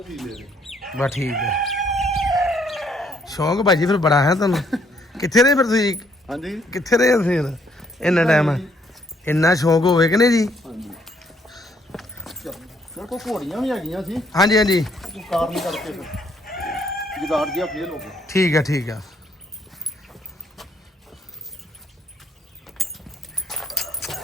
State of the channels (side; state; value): both; normal; correlation 0.68